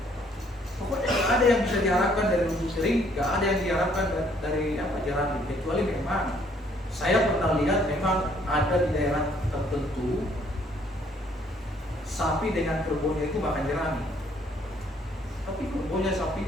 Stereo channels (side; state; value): both; normal; correlation 0.64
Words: Pokoknya nggak ada yang bisa diharapkan dari rumput kering, nggak ada yang diharapkan dari jerami, kecuali memang saya pernah lihat memang ada di daerah tertentu sapi dengan kerbaunya itu makan jerami. Tapi kerbaunya